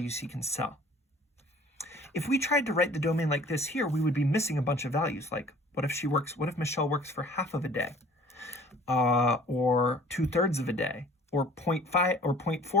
he can sell. If we tried to write the domain like this here, we would be missing a bunch of values. Like, what if Michelle works for half of a day, or 2/3 of a day, or 0.5 or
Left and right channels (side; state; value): both; normal; correlation 0.51